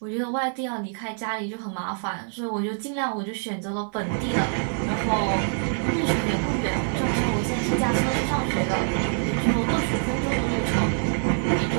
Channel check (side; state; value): left; silent; 62 dB below the other